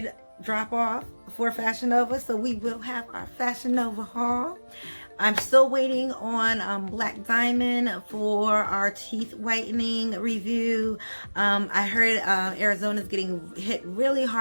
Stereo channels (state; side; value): inverted; both; correlation -1.00